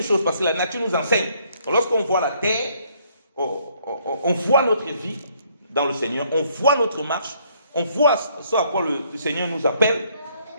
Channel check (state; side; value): inverted; both; correlation -0.67